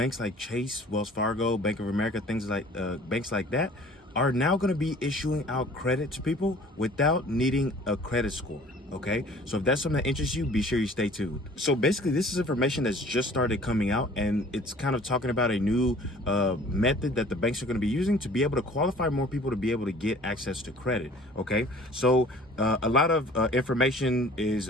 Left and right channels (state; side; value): normal; both; correlation 0.50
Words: like Chase, Wells Fargo, Bank of America, things like banks like that, are now going to be issuing out credit to people without needing a credit score. Okay, so if that's something that interests you, be sure you stay tuned. So basically, this is information that's just started coming out, and it's kind of talking about a new method that the banks are going to be using to be able to qualify more people to be able to get access to credit. Okay, so a lot of information is